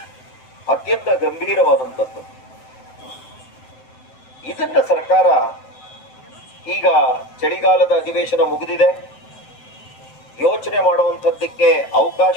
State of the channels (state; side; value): late; right; 7.9 ms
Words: ಅತ್ಯಂತ ಗಂಭೀರವಾದಂಥದ್ದು. ಇದನ್ನ ಸರ್ಕಾರ, ಈಗ ಚಳಿಗಾಲದ ಅಧಿವೇಶನ ಮುಗಿದಿದೆ, ಯೋಚನೆ ಮಾಡುವಂಥದ್ದಕ್ಕೆ ಅವಕಾಶ